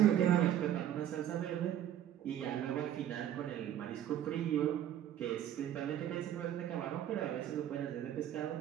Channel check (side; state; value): left; quieter; 11.0 dB